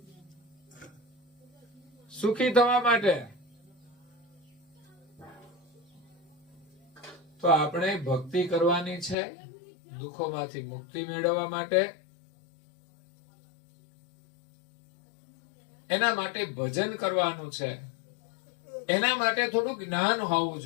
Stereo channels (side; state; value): right; drops out; at 9.2 s